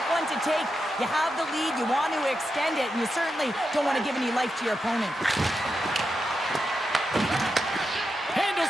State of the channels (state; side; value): normal; both; correlation 0.87